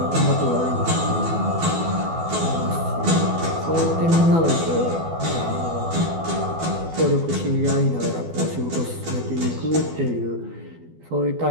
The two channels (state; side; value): late; left; 12 ms